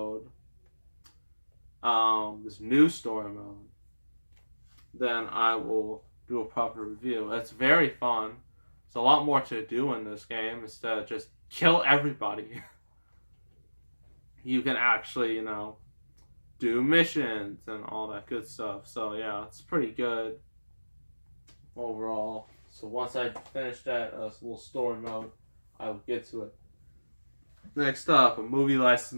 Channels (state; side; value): inverted; both; correlation -1.00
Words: this new story mode, then I will do a proper review. It's very fun. There's a lot more to do in this game instead of just kill everybody. You can actually, do missions and all that good stuff. So yeah, it's pretty good overall. So once I finish that little story mode, I will get to it. Next up, a movie